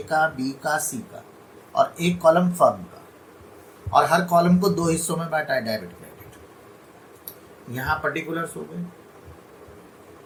का, B का, C का, और एक कॉलम फर्म का, और हर कॉलम को 2 हिस्सों में बांटा है, डेबिट क्रेडिट। यहाँ पर्टिकुलर्स हो गए।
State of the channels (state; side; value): identical; both; correlation 1.00